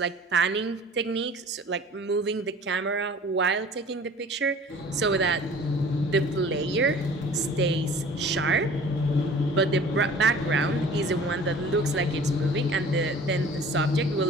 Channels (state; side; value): normal; both; correlation 0.47